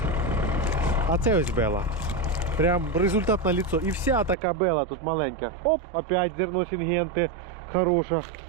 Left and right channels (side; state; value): left; drops out; at 4.4 s